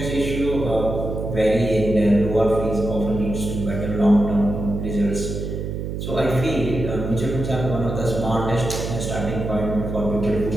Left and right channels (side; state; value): right; noise; hum, 5 dB below the sound